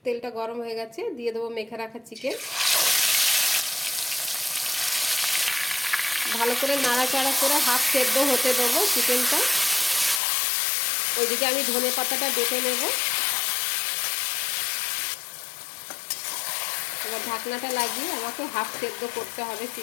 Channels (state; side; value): drops out; right; at 10.2 s